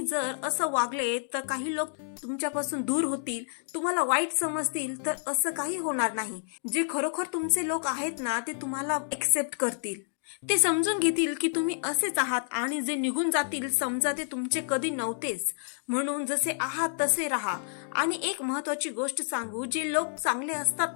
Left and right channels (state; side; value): silent; right; digital silence